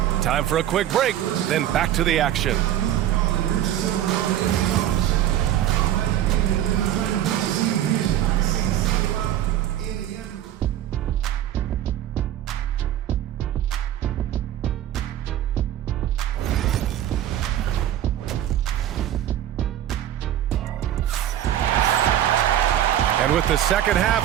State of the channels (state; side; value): quieter; left; 11.7 dB